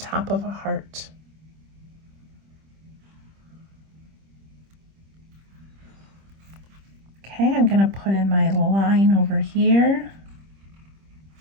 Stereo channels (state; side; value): late; left; 25 ms